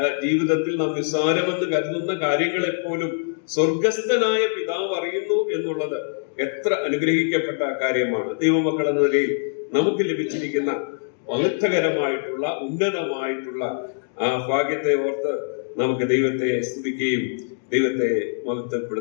ജീവിതത്തിൽ നാം നിസ്സാരമെന്ന് കരുതുന്ന കാര്യങ്ങളെപ്പോലും സ്വർഗസ്ഥനായ പിതാവ് അറിയുന്നു എന്നുള്ളത് എത്ര അനുഗ്രഹിക്കപ്പെട്ട കാര്യമാണ്. ദൈവമക്കൾ എന്ന നിലയിൽ നമുക്ക് ലഭിച്ചിരിക്കുന്ന മഹത്വകരമായിട്ടുള്ള ഉന്നതമായിട്ടുള്ള ആ ഭാഗ്യത്തെ ഓർത്ത് നമുക്ക് ദൈവത്തെ സ്തുതിക്കുകയും ദൈവത്തെ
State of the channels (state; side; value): silent; right; digital silence